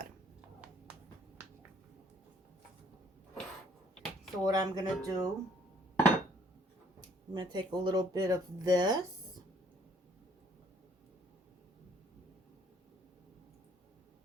So what I'm going to do, I'm going to take a little bit of this.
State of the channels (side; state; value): both; normal; correlation 0.61